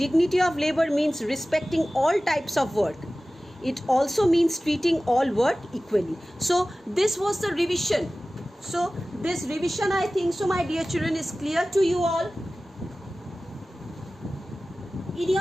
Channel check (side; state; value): both; normal; correlation 0.96